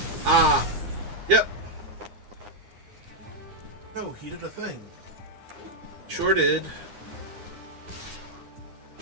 Ah. Yep. Oh, he did a thing. Sure did.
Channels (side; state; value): left; late; 9.7 ms